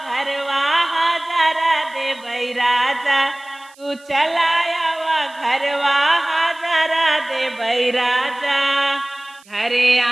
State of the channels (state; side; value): noise; right; hiss, 27 dB below the sound